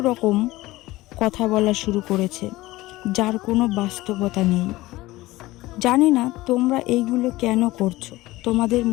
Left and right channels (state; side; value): quieter; right; 18.6 dB